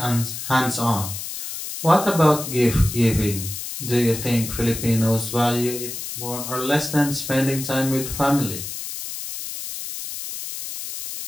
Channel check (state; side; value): noise; left; hiss, 7 dB below the sound